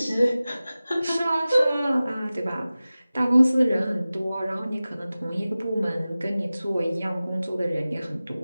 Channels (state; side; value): inverted; both; correlation -0.97